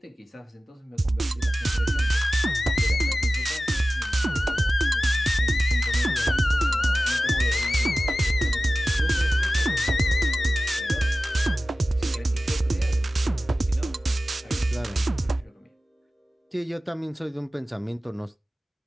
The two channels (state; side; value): normal; both; correlation 0.95